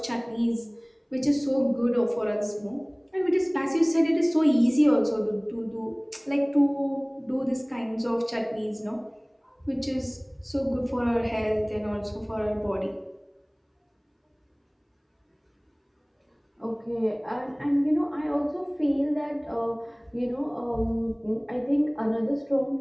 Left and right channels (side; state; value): both; identical; correlation 1.00